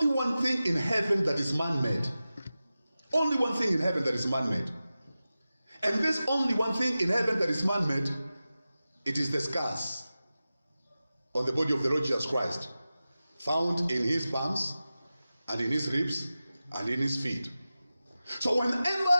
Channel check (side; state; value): both; inverted; correlation -0.95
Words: one thing in heaven that is man-made. Only one thing in heaven that is man-made. And this only one thing in heaven that is man-made, it is the scars on the body of the Lord Jesus Christ, found in his palms and in his ribs and in his feet. So whenever